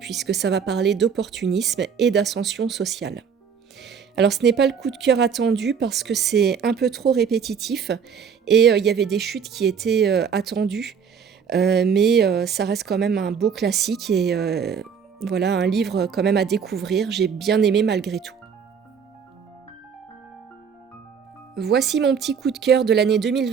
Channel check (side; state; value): left; quieter; 6.8 dB